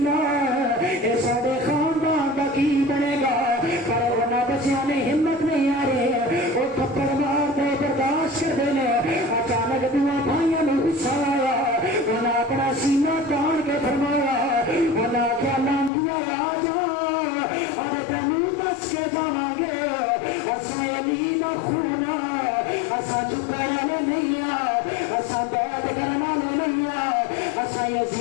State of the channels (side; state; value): right; drops out; at 15.9 s